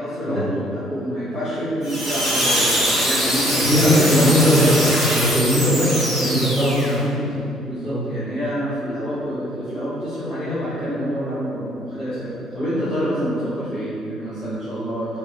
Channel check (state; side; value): normal; both; correlation 0.61